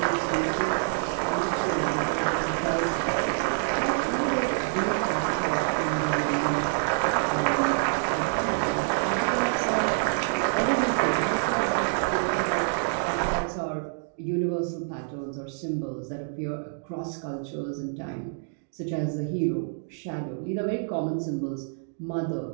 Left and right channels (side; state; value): left; silent; digital silence